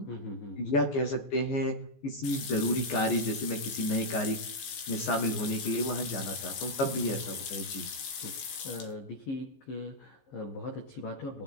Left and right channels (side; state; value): right; late; 14 ms